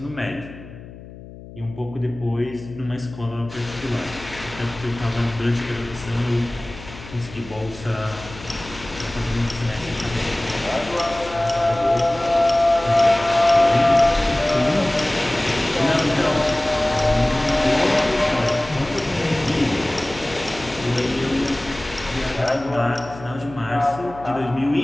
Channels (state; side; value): noise; left; hum, 16 dB below the sound